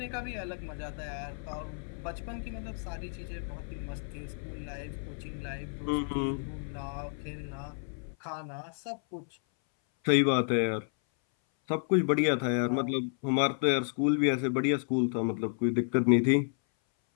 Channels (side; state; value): right; silent; 57 dB below the other